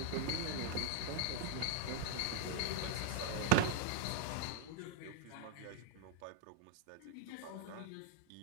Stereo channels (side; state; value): both; different; correlation -0.01